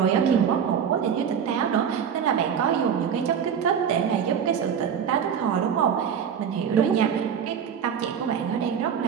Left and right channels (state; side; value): quieter; left; 7.8 dB